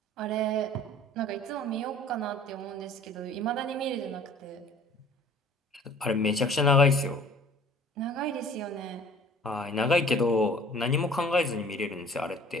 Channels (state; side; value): normal; both; correlation 0.50